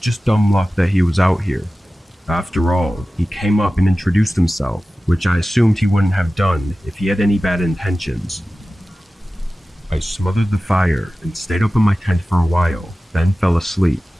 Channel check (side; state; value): both; normal; correlation 0.95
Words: dumb luck that he was out here. After all, he came up and introduced himself, which I assumed he wouldn't have done if he had any bad intentions. I smothered the fire and stayed up in my tent for a while, then fell asleep.